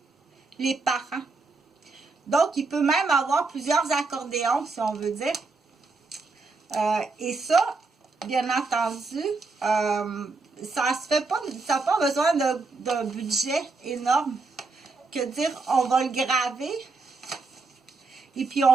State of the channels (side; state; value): left; quieter; 3.9 dB